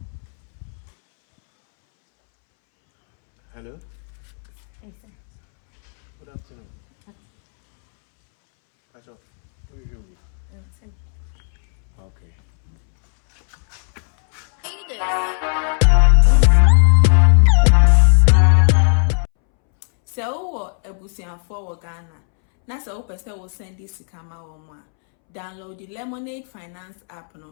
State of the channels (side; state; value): right; silent; 67 dB below the other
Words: Hello. Hey, sir. Good afternoon. What's up? Who are you here with? Tim. Okay. So, for Ghana. Na so person will send this kama omwa. Download the Lemonade Finance app